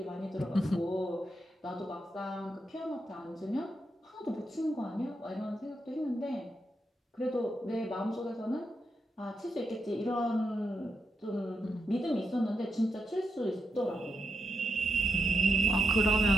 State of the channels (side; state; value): both; normal; correlation 0.84